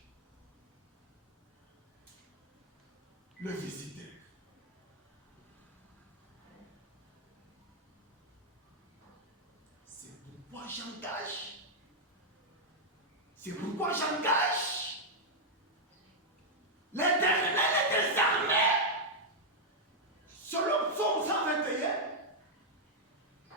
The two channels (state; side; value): normal; both; correlation -0.03